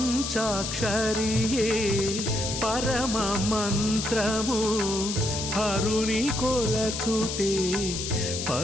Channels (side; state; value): left; noise; hiss, 4 dB below the sound